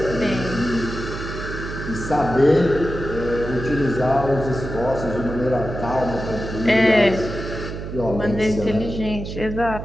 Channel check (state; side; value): noise; right; hum, 7 dB below the sound